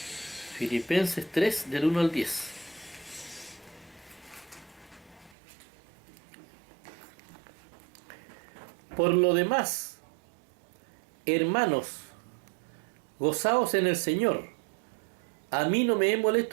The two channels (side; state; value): left; drops out; at 5.4 s